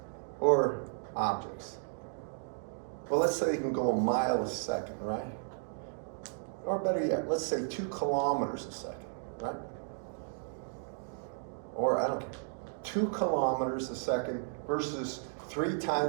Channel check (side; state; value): left; silent; digital silence